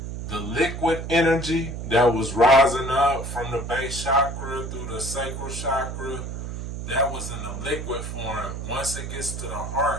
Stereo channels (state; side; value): noise; right; hum, 6 dB below the sound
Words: the liquid energy that was rising up from the base chakra through the sacral chakra. That was in the liquid form. Once it gets to the